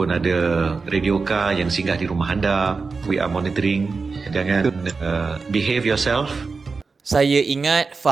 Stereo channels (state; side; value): quieter; left; 4.5 dB